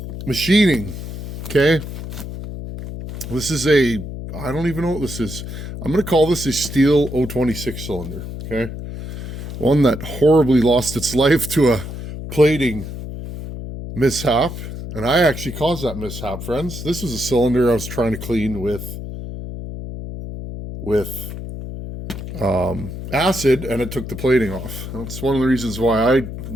machining, okay? This is I don't even know what this is. I'm going to call this a steel 026 cylinder, okay? One that horribly lost its life to a plating mishap. And I actually caused that mishap, friends. This was a cylinder I was trying to clean with acid, and it took the plating off. That's one of the reasons why I've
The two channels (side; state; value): left; noise; hum, 8 dB below the sound